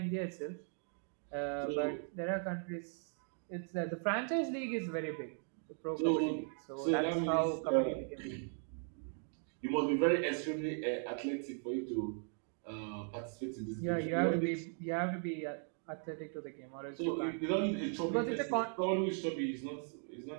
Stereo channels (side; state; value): left; silent; 52 dB below the other